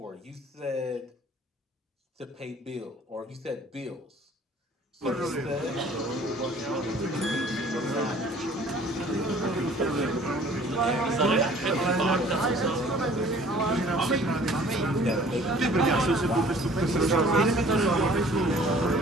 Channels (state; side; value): normal; both; correlation 0.52